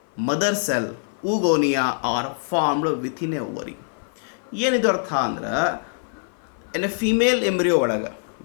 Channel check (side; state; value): right; silent; 57 dB below the other